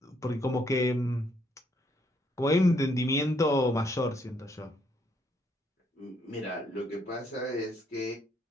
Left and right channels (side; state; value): both; normal; correlation 0.71